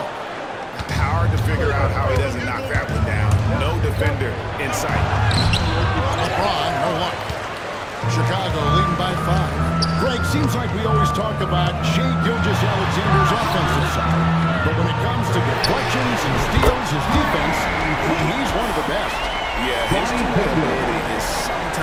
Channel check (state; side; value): identical; both; correlation 1.00